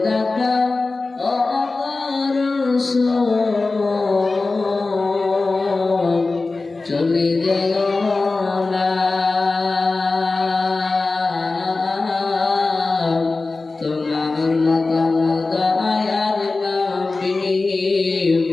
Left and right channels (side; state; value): right; quieter; 3.6 dB